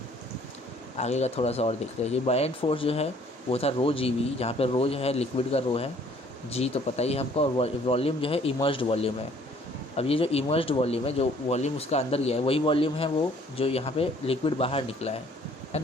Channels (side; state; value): both; normal; correlation 0.58